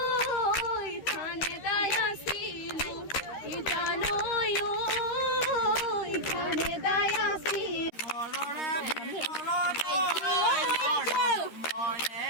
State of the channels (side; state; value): right; late; 13 ms